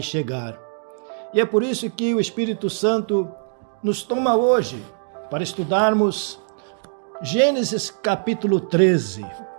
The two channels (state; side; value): silent; left; digital silence